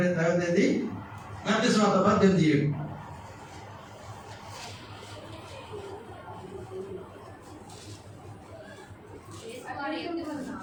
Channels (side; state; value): both; identical; correlation 1.00